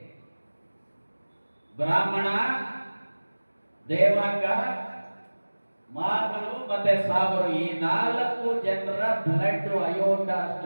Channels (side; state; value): both; inverted; correlation -1.00